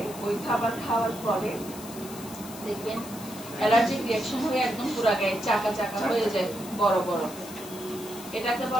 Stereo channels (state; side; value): noise; left; hiss, 14 dB below the sound